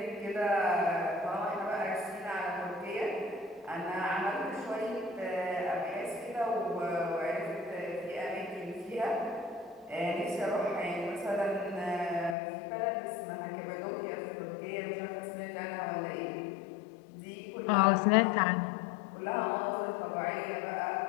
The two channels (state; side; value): drops out; right; at 12.4 s